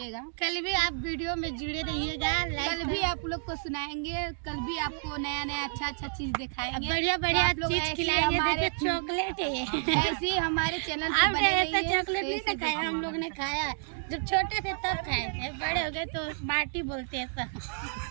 कल भी आप वीडियो में जुड़े रहिएगा। कल भी आप लोग को सुनाएंगे, कल भी आपको नया नया अच्छा चीज दिखाएंगे, बढ़िया बढ़िया चीज खिलाएंगे। देखिए चॉकलेट है ऐसी हमारे चैनल आप ऐसा चॉकलेट नहीं ना खाया, हम लोग ने खाया जब छोटे थे तब खाए थे, बड़े हो गए तो बाटी बोलते हैं सब।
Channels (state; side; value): silent; left; digital silence